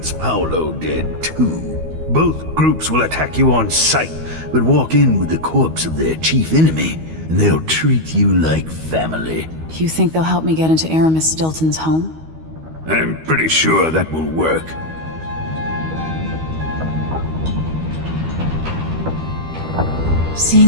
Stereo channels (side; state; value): left; late; 13 ms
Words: Paolo dead too. Both groups will attack you on sight, but walk in with the corpse of their chief enemy, and they'll treat you like family. You think they'll help me get into Aramis Stilton's home? I'm pretty sure that will work.